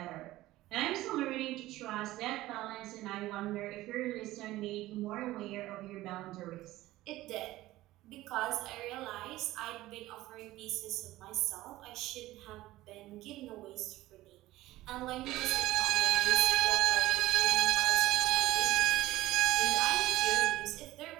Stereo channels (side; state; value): left; quieter; 16.8 dB